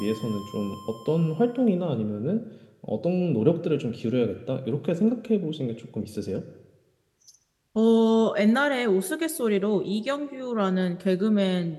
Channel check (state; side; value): identical; both; correlation 1.00